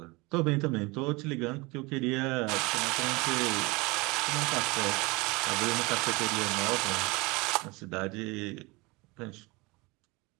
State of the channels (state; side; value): quieter; left; 25.1 dB